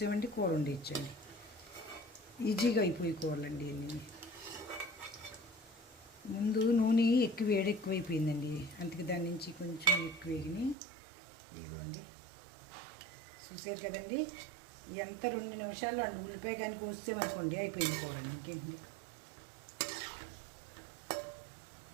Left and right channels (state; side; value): drops out; left; at 10.8 s